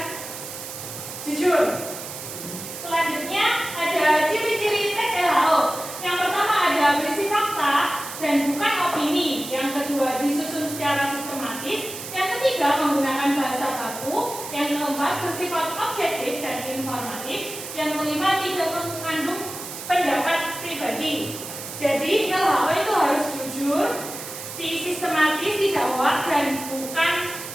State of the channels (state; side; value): noise; right; hiss, 10 dB below the sound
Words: jujur. Selanjutnya ada ciri-ciri tes LHO. Yang pertama ada berisi fakta dan bukan opini. Yang kedua disusun secara sistematis. Yang ketiga menggunakan bahasa baku. Yang keempat bersifat objektif dan informatif. Yang kelima tidak mengandung pendapat pribadi. Jadi LHO itu harus jujur, sistematis, tidak hoak, dan bukan